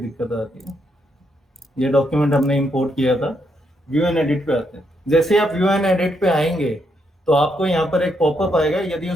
आती है। ये डॉक्यूमेंट हमने इंपोर्ट किया था। व्यू एंड एडिट पे आते हैं। जैसे आप व्यू एंड एडिट पे आएंगे तो आपको यहाँ पर एक पॉपअप आएगा, यदि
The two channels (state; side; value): normal; both; correlation 0.78